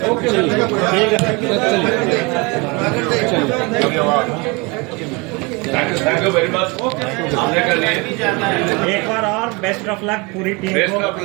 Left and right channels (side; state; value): left; quieter; 27.7 dB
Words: Thank you very much. हमने कर लिए। एक बार और बेस्ट ऑफ लक पूरी टीम बेस्ट को। Of